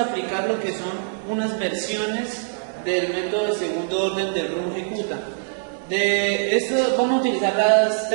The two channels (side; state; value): left; silent; digital silence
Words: aplicar lo que son unas versiones del método de segundo orden del Runge Kutta. De esto vamos a utilizar las